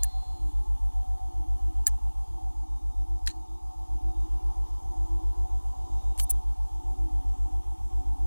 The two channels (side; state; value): both; inverted; correlation -1.00